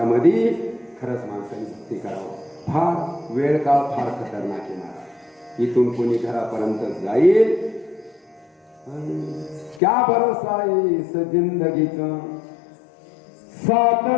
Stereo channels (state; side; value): drops out; right; at 9.8 s